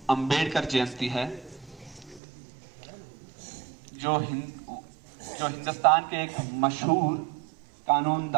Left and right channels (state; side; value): drops out; left; at 2.2 s